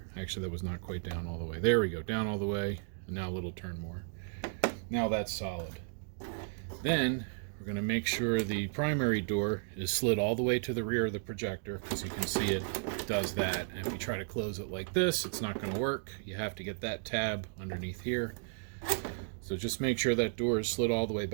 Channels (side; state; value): left; silent; digital silence